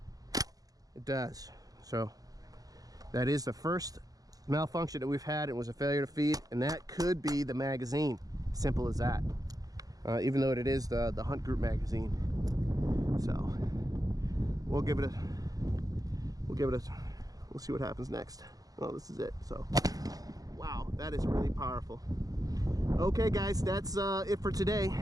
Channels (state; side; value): late; left; 0.18 ms